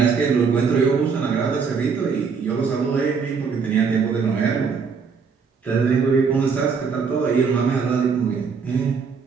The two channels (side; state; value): left; quieter; 5.7 dB